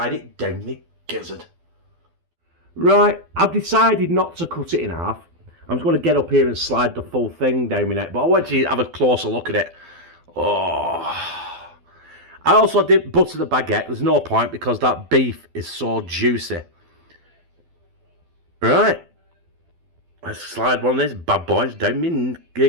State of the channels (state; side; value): late; left; 12 ms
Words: it down my gizzard. Right, I've decided not to cut it in half. I'm just going to get up here and slide the full thing down my neck, but I want you to have a closer look at it. Oh, I also did butter the baguette. There's no point because that beef is so juicy. Right. Let's slide one of these bad boys down my